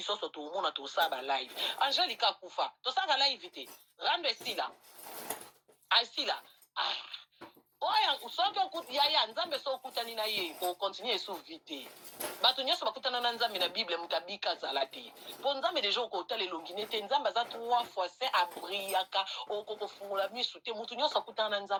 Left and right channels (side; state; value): both; identical; correlation 1.00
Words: so to mona to saba live Angelica kufa to saka live te rando esila asila oya soki okuti yaya nzambe so okutani na ye okontinue esuvi te bato nyonso bakutana na nzambe na bible moto abika azala te mpo nzambe deja okotala elongi ne te nzambe aza 3 fois saint abriaka okokofungola misu te moto nyonso akutana na